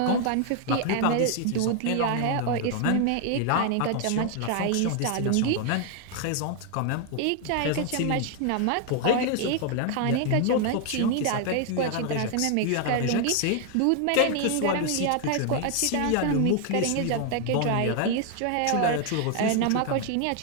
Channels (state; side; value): different; both; correlation 0.00